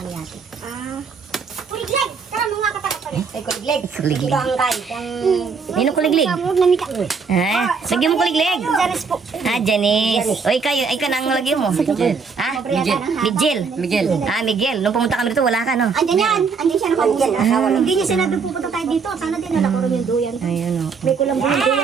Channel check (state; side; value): quieter; left; 5.3 dB